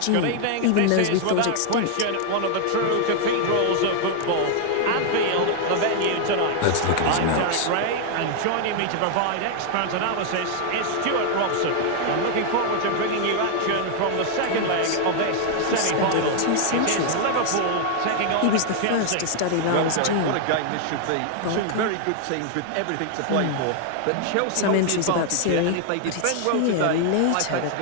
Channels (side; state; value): both; different; correlation 0.00